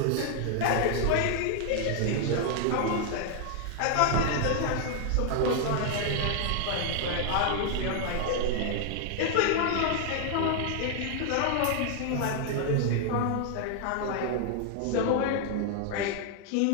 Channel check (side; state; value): both; different; correlation 0.00